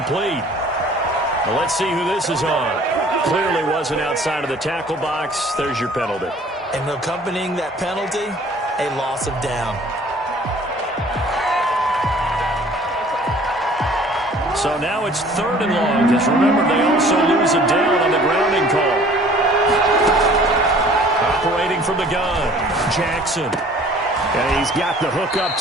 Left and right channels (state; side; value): normal; both; correlation 0.52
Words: Well, let's see who this is on. Clearly wasn't outside of the tackle box. There's your penalty. And accompanying that penalty, a loss of down. So now it's 3rd and long, because remember, they also lose a down on the grounding call. Operating from the gun, Jackson. And he's got the hook up